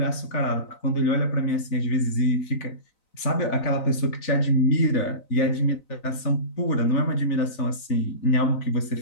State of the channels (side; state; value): right; late; 4.0 ms